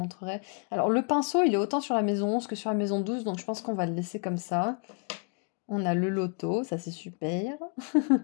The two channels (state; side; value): quieter; right; 37.4 dB